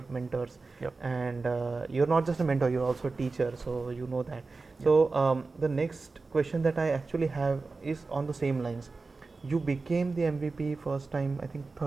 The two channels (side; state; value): left; quieter; 3.9 dB